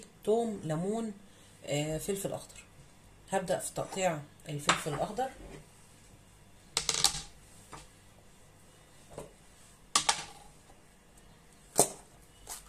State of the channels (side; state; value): both; identical; correlation 1.00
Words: توم، ليمون، فلفل اخضر. هبدأ في تقطيع الفلفل الاخضر.